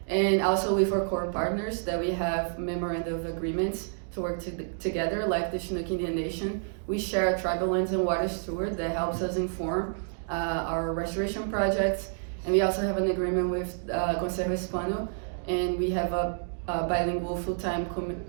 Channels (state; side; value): silent; left; digital silence